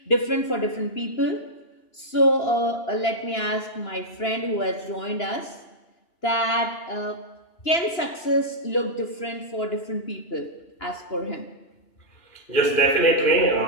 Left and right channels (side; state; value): right; late; 2.9 ms